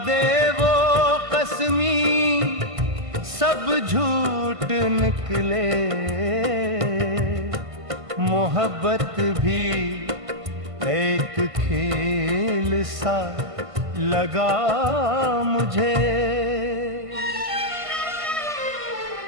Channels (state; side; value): late; left; 1.5 ms